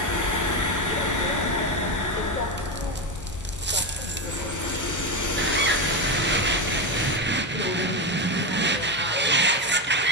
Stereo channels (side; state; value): both; normal; correlation 0.13